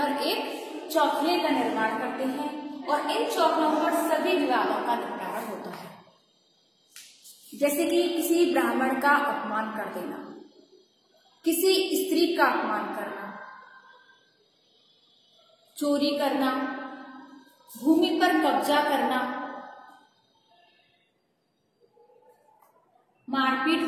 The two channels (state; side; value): identical; both; correlation 1.00